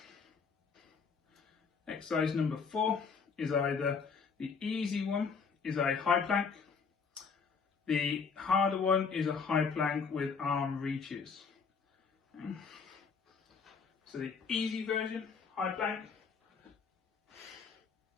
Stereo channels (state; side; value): quieter; right; 5.6 dB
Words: Exercise number 4 is either the easy one is a high plank. The harder one is a high plank with arm reaches. Okay. So the easy version, high plank.